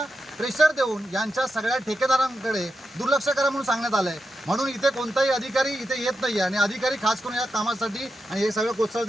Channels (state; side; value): normal; both; correlation 0.88